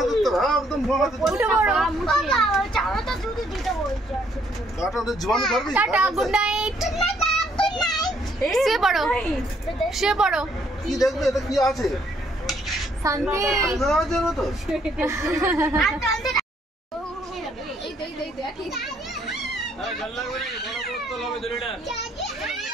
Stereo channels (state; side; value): normal; both; correlation 0.68